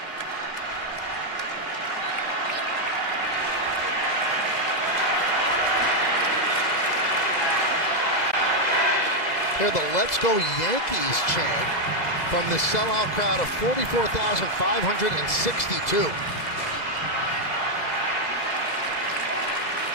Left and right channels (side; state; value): right; late; 2.0 ms